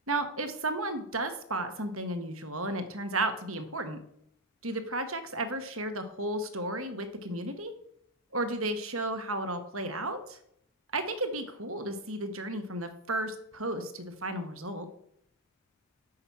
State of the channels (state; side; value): normal; both; correlation 0.04